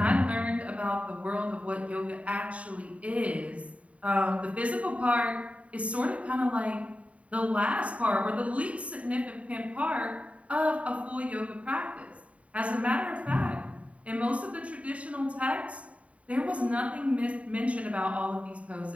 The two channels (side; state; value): left; late; 0.066 ms